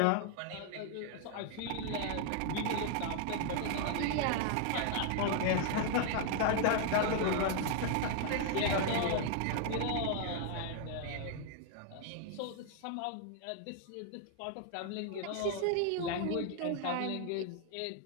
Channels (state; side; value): different; both; correlation 0.00